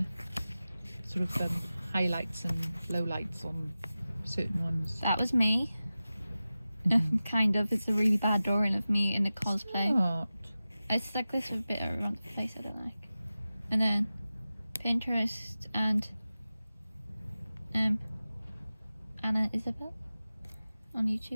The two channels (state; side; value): inverted; both; correlation -0.95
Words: Sort of highlights and lowlights on certain ones. That was me. Mhm. Kind of. It's a really bad drawing of me in a cosplay. Not. It's like this with a bit around the place I don't like. And then Pinterest and Anna Isabel on